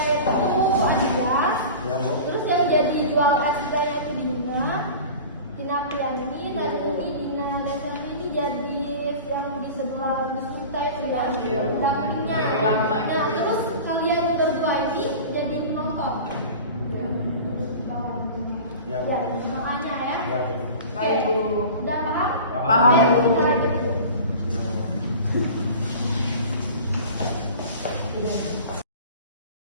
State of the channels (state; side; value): inverted; both; correlation -0.37